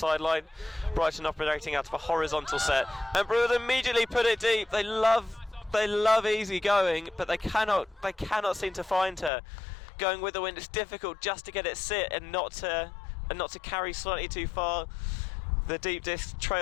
Brighton operating out of a horizontal set, and Brew will immediately put it deep. They love Easy going, but they cannot seem to find her. Going with the wind, it's difficult just to get it sit and not to carry slightly too far. The deep disc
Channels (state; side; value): drops out; right; at 9.3 s